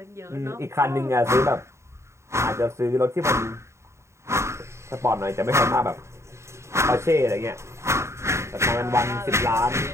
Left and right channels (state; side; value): late; left; 0.14 ms